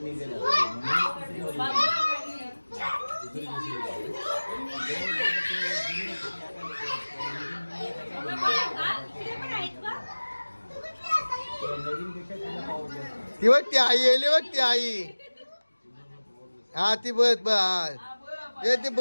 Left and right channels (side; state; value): both; inverted; correlation -1.00